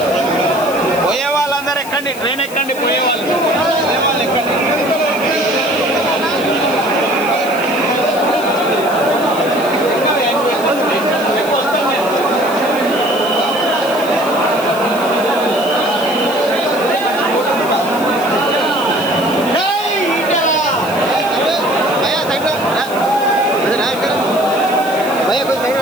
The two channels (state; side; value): noise; left; hiss, 15 dB below the sound